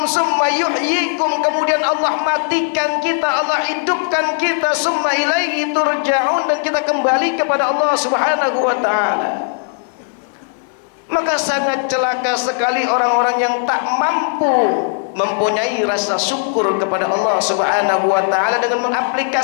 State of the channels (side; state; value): right; silent; digital silence